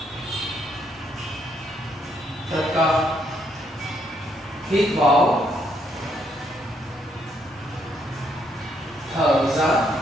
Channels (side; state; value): both; normal; correlation 0.73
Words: Tất cả hít vào, thở ra.